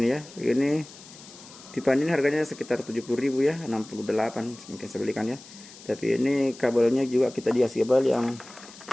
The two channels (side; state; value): left; noise; hiss, 19 dB below the sound